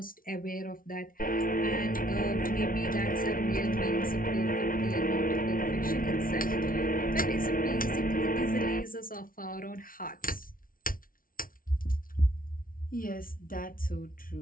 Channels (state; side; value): late; right; 0.41 ms